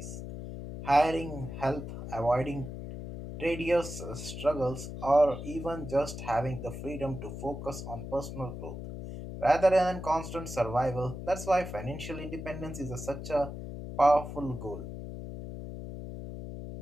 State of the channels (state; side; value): noise; left; hum, 8 dB below the sound